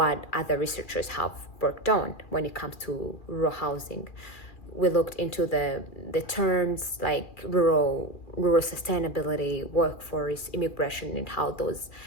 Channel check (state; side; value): late; right; 2.4 ms